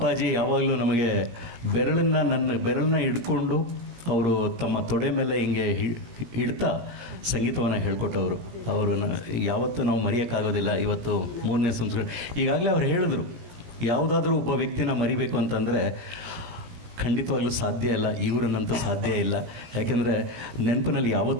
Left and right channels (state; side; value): late; left; 17 ms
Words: ಯಾವಾಗಲೂ ನಮಗೆ ನನ್ನ ಬೆರಳನ್ನ ಹಿಡ್ಕೊಂಡು ಅವರು ತಮ್ಮ ತೊಡೆ ಮೇಲೆ ಹಿಂಗೆ ಹಿಡ್ತಾ ಸಂಗೀತವನ್ನು ಹೇಳ್ಕೊಟ್ಟವರು. ಅವರನ್ನು ಯಾವತ್ತೂ ನಾವು ಮರೆಯೋಕ್ಕಾಗೋದಿಲ್ಲ. ಇವತ್ತು 3ನೇ ಸಂಸ್ಕೃತಿ. ಈಗಾಗಲೇ ಅವ್ರು ಹೇಳಿದ್ರು, ಯಾವುದಾದ್ರೂ ಒಬ್ಬ ವ್ಯಕ್ತಿನ ಮರಿಬೇಕು ಅಂತಂದರೆ ಖಂಡಿತವಾಗ್ಲೂ ಸಾಧ್ಯ ಇಲ್ಲ, ಇವರನ್ನಂತೂ ಸಾಧ್ಯ ಇಲ್ಲ. ಯಾಕೆಂದರೆ ನೆನಪಿನಲ್ಲಿ